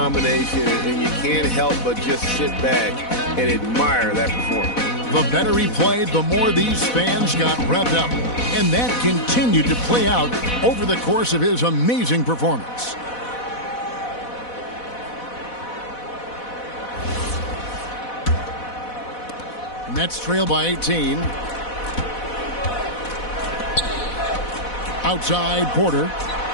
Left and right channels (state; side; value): late; right; 4.1 ms